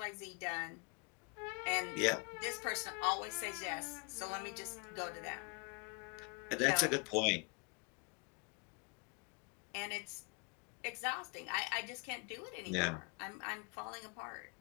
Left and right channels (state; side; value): quieter; right; 33.0 dB